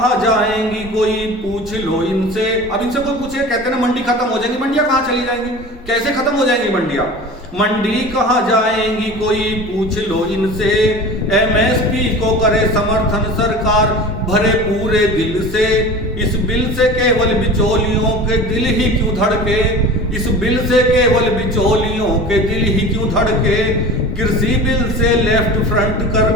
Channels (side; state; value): both; normal; correlation 0.36